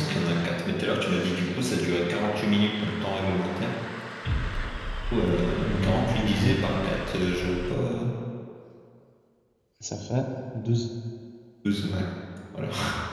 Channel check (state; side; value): identical; both; correlation 1.00